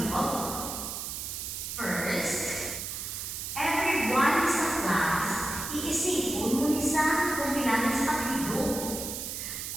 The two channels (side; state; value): right; noise; hiss, 5 dB below the sound